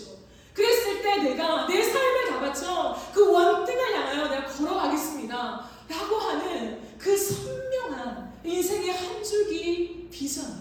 그랬을 때 내가 내 삶을 다 바쳐 그 원등을 향하여 내가 걸어가겠습니다 라고 하는 그 선명한 인생의 한 줄기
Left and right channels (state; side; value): identical; both; correlation 1.00